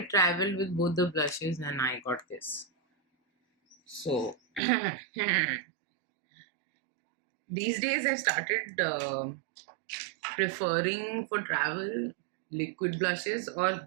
traveled with both the blushes and I got this. So these days I've started preferring for travel liquid blushes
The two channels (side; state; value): left; drops out; at 4.6 s